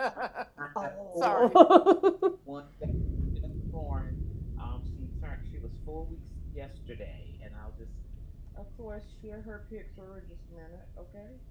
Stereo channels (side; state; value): both; identical; correlation 1.00